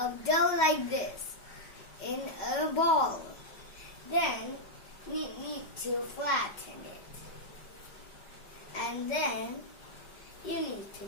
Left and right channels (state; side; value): late; right; 5.2 ms